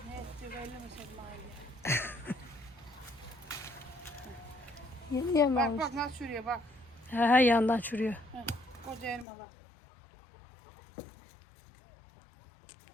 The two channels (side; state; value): right; drops out; at 9.2 s